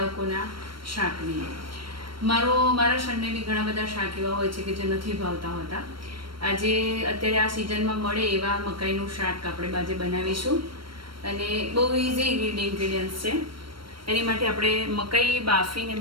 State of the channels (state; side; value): late; left; 0.73 ms